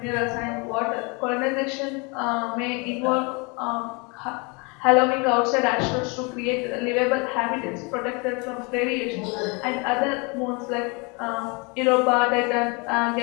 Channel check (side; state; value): right; quieter; 30.2 dB